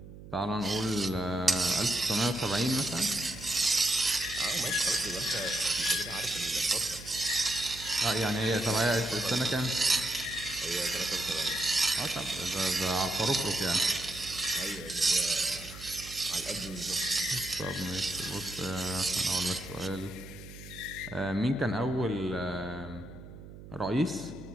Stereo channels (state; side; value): noise; right; hum, 15 dB below the sound